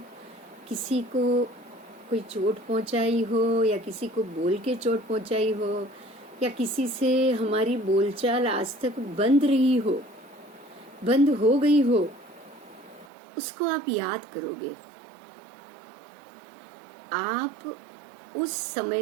किसी को कोई चोट पहुंचाई हो या किसी को बोल के चोट पहुंचाई हो या किसी से हमारी बोलचाल आज तक बंद रही हो, बंद हो गई हो, उसको आप याद करोगे, आप उस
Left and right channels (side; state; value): left; drops out; at 13.1 s